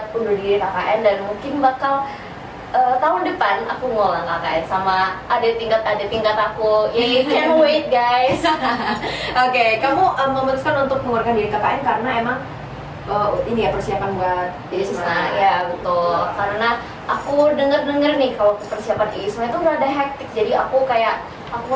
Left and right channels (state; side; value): identical; both; correlation 1.00